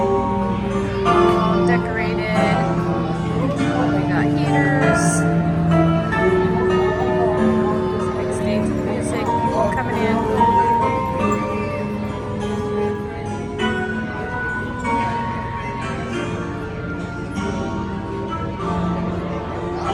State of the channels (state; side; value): identical; both; correlation 1.00